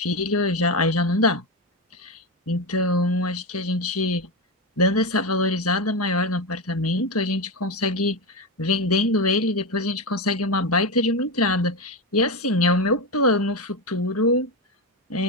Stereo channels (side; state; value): both; normal; correlation 0.14